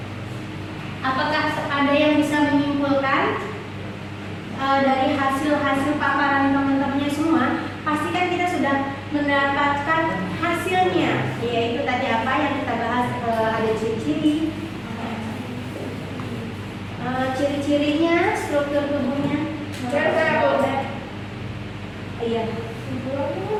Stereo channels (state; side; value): identical; both; correlation 1.00